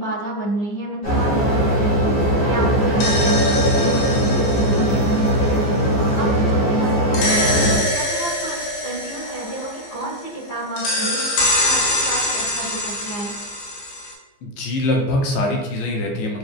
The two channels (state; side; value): late; right; 15 ms